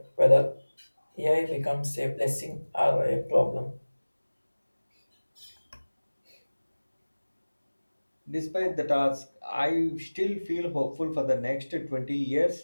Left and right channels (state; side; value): inverted; both; correlation -1.00